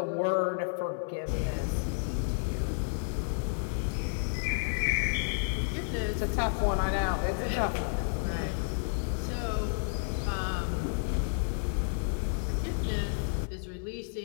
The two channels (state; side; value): silent; right; digital silence